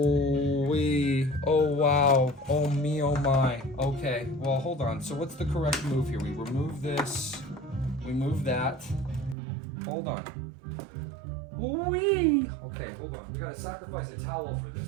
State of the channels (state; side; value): drops out; left; at 9.3 s